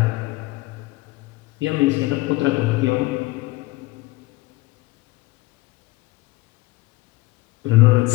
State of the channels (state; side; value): quieter; right; 20.8 dB